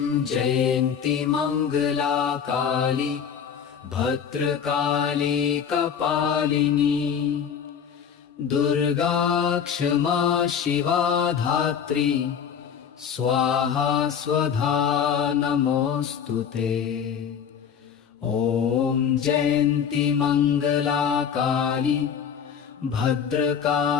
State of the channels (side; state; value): right; quieter; 7.6 dB